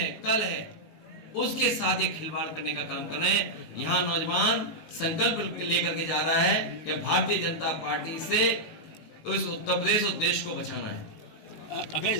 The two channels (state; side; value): late; right; 19 ms